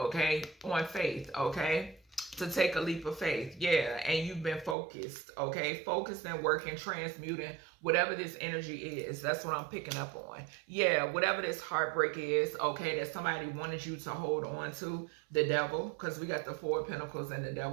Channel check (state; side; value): drops out; left; at 4.8 s